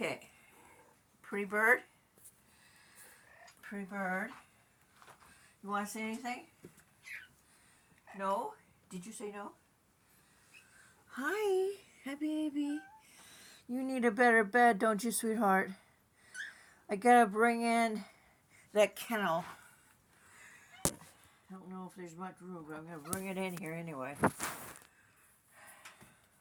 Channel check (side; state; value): both; identical; correlation 1.00